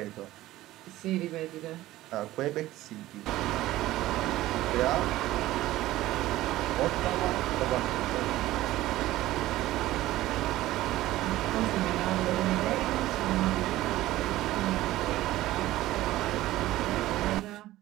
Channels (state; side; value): quieter; left; 16.0 dB